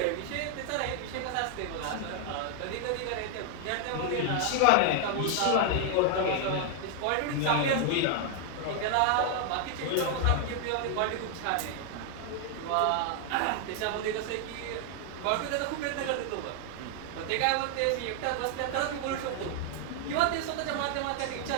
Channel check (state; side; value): different; both; correlation 0.00